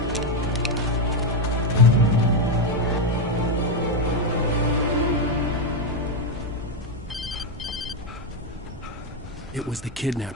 It was the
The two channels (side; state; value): both; normal; correlation 0.05